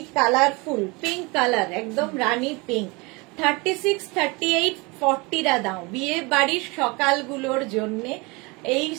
কালারফুল, পিঙ্ক কালার, একদম রানী পিঙ্ক। 36, 38, 40 রা দাও। বিয়ে বাড়ির সকালগুলোর জন্য এই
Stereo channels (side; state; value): left; quieter; 26.5 dB